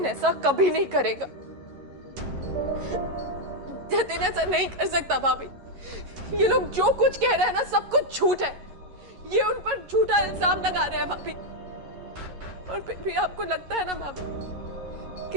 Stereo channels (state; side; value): late; left; 11 ms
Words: ऐसा कभी नहीं करेगा। जतिन ऐसा नहीं कर सकता भाभी। ये लोग जो कुछ कह रहे हैं ना, सब कुछ झूठ है। ये उन पर झूठा इल्जाम लगा रहे हैं भाभी। और फिर भी आपको लगता है ना भाभी